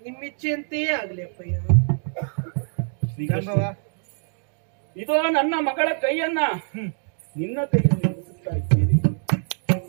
ನಿಮ್ಮಿಚ್ಛೆಯಂತೆಯೇ ಆಗ್ಲಿ ಅಪ್ಪಯ್ಯ. ಇದೋ ನನ್ನ ಮಗಳ ಕೈಯನ್ನ ನಿನ್ನ ಕೈಯಲ್ಲಿ ಮುಗಿಸುತ್ತಾ ಇದ್ದೇನೆ.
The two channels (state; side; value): silent; left; 60 dB below the other